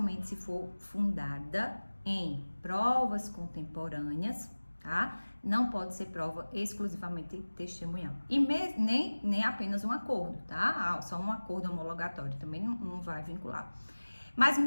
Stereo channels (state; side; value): inverted; both; correlation -1.00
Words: se for fundada em provas contemporâneas, tá? Não pode ser prova exclusivamente testemunhal. E nem apenas um acordo, tá? Só um acordo homologatório também não vai vincular. Mas